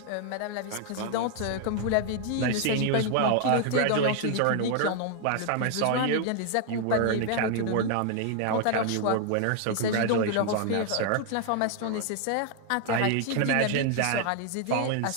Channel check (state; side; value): different; both; correlation 0.00